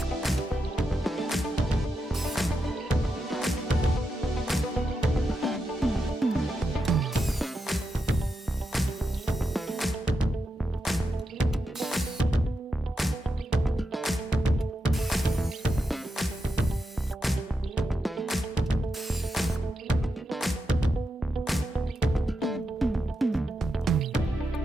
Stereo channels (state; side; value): normal; both; correlation 0.86